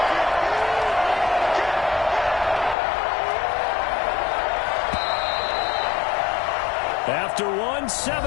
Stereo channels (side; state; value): right; drops out; at 2.8 s